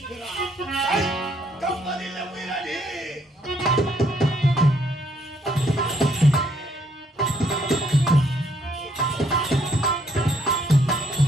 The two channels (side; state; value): both; normal; correlation 0.69